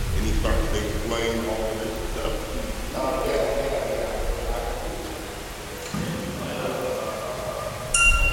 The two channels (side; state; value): both; identical; correlation 1.00